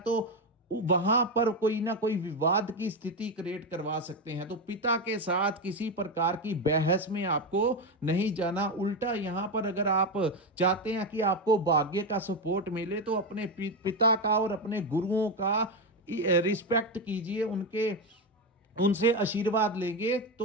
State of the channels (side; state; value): both; normal; correlation 0.11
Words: वहां पर कोई ना कोई विवाद की स्थिति क्रिएट करवा सकते हैं। तो पिता के साथ किसी प्रकार की बहस में आपको नहीं जाना। उल्टा यहां पर अगर आप चाहते हैं कि आपको भाग्य का सपोर्ट मिले तो अपने पिता का और अपने गुरुओं का रिस्पेक्ट कीजिए, उनसे आशीर्वाद लेंगे